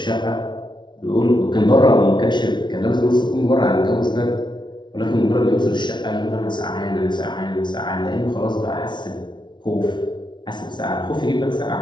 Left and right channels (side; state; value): right; late; 0.22 ms